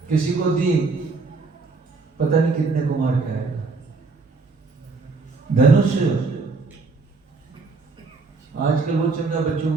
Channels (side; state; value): left; quieter; 4.1 dB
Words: किसी को दी, पता नहीं कितने को मार के आएगा। धनुष आजकल वो चल रहा बच्चों